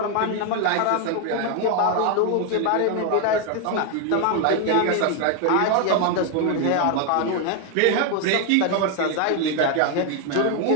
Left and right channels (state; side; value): different; both; correlation 0.01